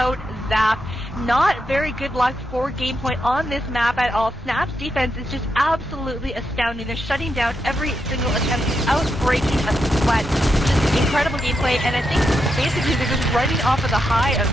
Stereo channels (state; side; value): normal; both; correlation 0.84